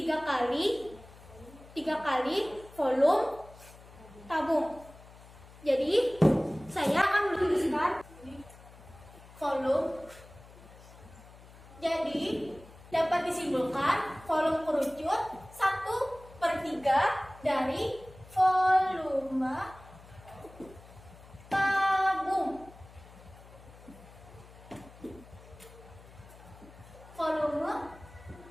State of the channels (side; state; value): left; noise; hum, 21 dB below the sound